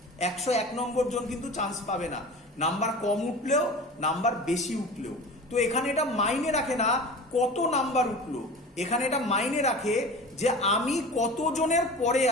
101 নম্বর জন কিন্তু চান্স পাবে না। নাম্বার কম উঠলেও, নাম্বার বেশি উঠলেও। তো এখানে এটা মাইনে রাখে না কত নাম্বার উঠলো, এখানে এটা মাইনে রাখে যে আমি কতজনের পরে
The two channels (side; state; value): both; normal; correlation 0.36